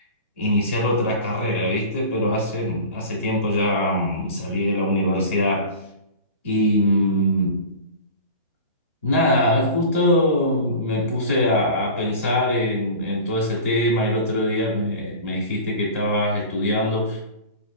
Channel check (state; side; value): inverted; both; correlation -0.36